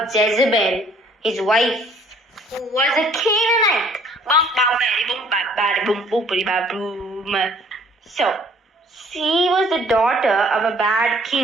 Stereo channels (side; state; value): both; normal; correlation 0.58